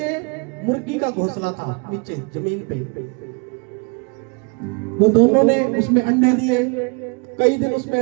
मुर्गी का घोंसला था, नीचे जमीन पे। वो दोनों ने उसमें अंडे दिए, कई दिन उसमें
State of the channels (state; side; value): quieter; left; 33.8 dB